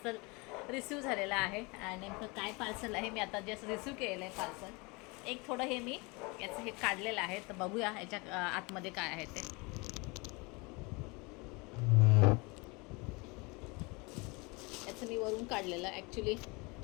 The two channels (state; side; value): quieter; right; 27.6 dB